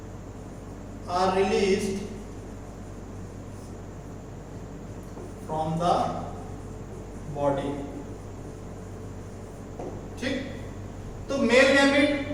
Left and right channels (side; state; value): both; identical; correlation 1.00